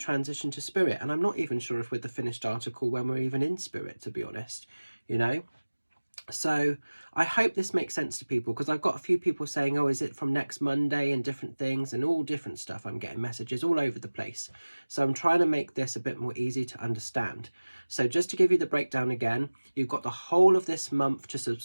to spirit. And I'm not even sure if we're the finished article when we're even in spirit, to be honest, you know. So I hope this makes sense to people, because I've got a few people saying, oh, is it from next Monday, and different things and all different stuff. I'm getting messages all over the place. So I'm trying to make this a bit more easy to understand. So just to give you the breakdown again, you've got the whole of this month to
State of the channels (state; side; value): inverted; both; correlation -1.00